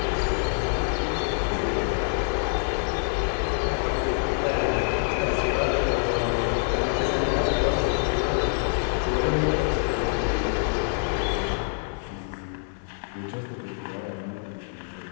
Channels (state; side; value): silent; right; digital silence